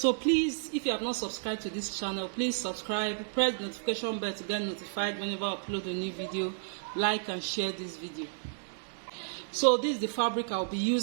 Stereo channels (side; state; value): left; silent; digital silence